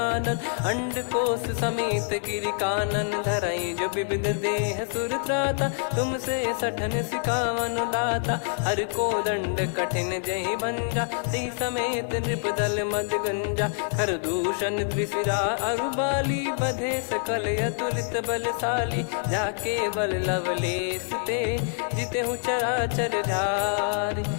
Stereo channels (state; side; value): silent; right; 61 dB below the other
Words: अंड कोश समेत गिरि कानन। धरई जो विविध देह सुर त्राता, तुमसे सठन सिखावन दाता। हर को दंड कठिन जहि भंजा, ती समेत नृप दल मद गंजा। कर दूषण त्रिशिरा अरुबाली, बधे सकल अतुलित बलशाली। जाके बल लवलेस ते, जिते हूँ चराचर झारी।